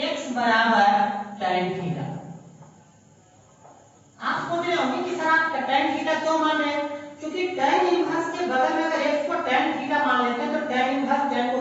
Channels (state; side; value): identical; both; correlation 1.00